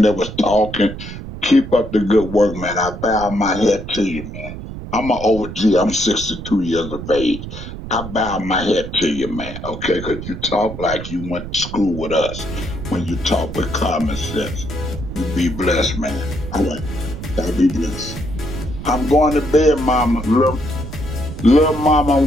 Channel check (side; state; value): right; noise; rumble, 10 dB below the sound